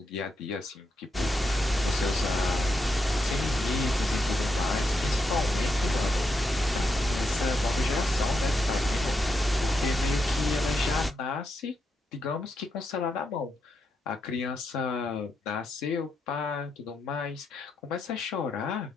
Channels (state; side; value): normal; both; correlation 0.83